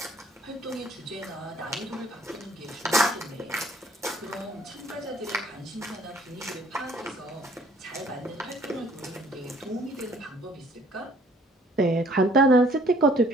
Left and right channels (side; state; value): both; normal; correlation 0.58